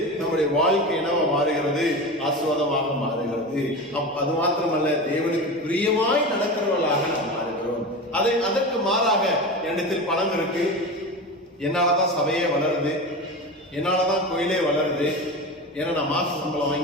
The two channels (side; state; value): both; normal; correlation 0.26